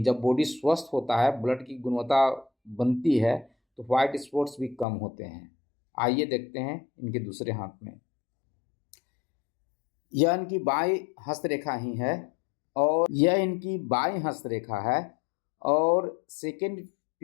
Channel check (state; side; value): drops out; right; at 4.9 s